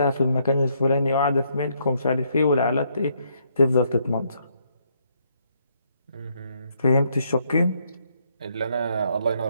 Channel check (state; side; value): inverted; both; correlation -0.73